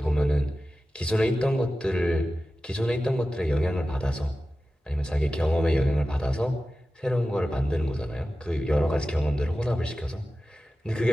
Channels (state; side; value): normal; both; correlation 0.94